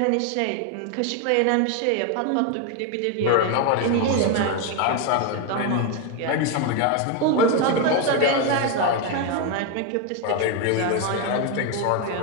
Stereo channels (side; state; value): both; different; correlation 0.02